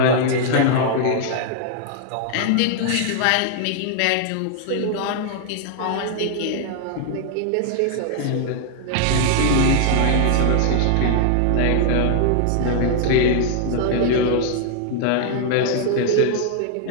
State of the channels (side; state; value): both; different; correlation 0.00